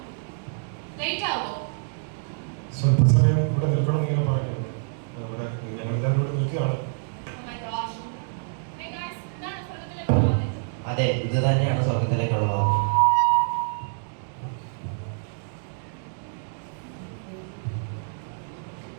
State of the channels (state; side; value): silent; left; digital silence